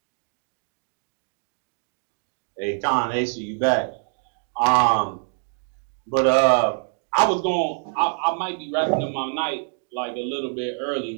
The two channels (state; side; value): silent; left; 62 dB below the other